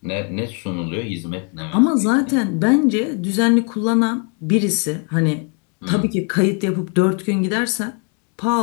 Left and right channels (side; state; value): right; quieter; 38.3 dB